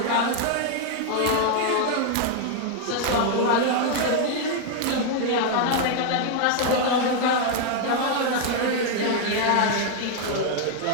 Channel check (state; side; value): different; both; correlation 0.00